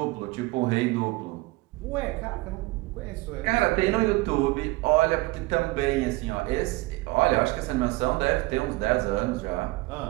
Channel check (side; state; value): left; quieter; 21.4 dB